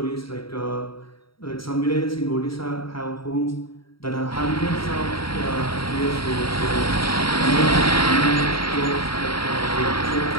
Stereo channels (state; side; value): late; right; 0.75 ms